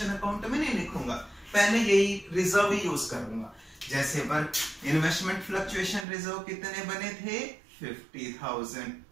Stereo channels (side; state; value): left; drops out; at 6.1 s